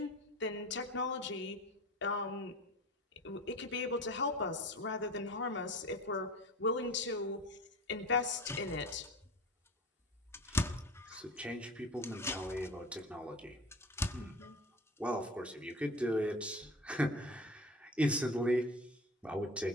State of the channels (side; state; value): both; normal; correlation 0.36